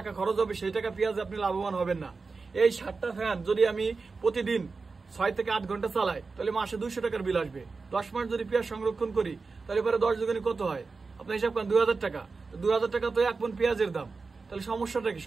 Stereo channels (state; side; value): quieter; left; 4.3 dB